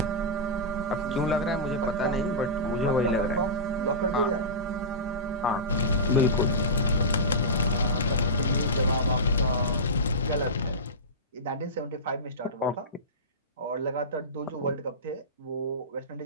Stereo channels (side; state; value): both; normal; correlation -0.17